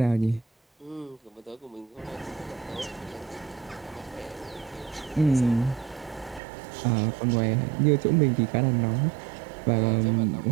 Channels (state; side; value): drops out; left; at 6.4 s